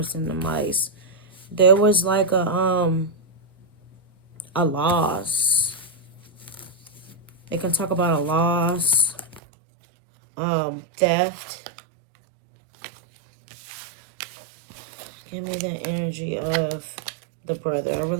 and the mice. There was like a loss. They can talk about a loss, theft. Give me the energy of the brother. I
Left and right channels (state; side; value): drops out; left; at 9.4 s